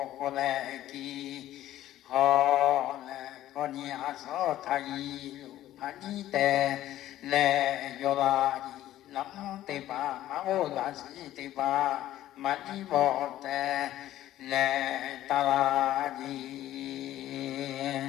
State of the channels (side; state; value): right; quieter; 13.6 dB